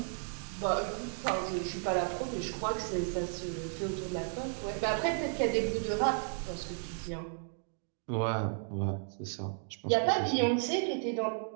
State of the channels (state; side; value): silent; left; 55 dB below the other